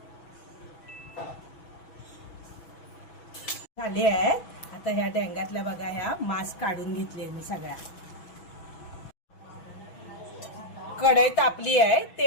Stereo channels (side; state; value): right; late; 6.1 ms